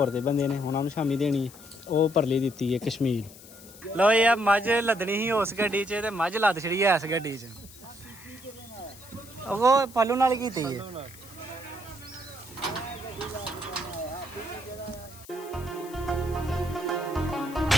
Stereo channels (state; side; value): noise; left; hiss, 19 dB below the sound